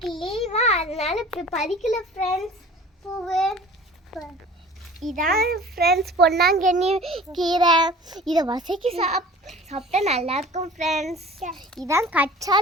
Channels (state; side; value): normal; both; correlation 0.44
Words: லீவா, அதனால இப்ப பறிக்கல ஃப்ரெண்ட்ஸ் பூவு. இதான் ஃப்ரெண்ட்ஸ் பொன்னாங்கண்ணி கீரை. இதை வசக்கி சாப்பிட்டா நல்லா இருக்கும் ஃப்ரெண்ட்ஸ். இதான்